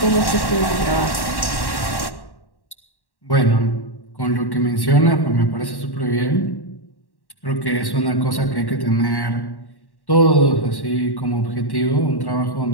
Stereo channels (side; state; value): right; late; 1.1 ms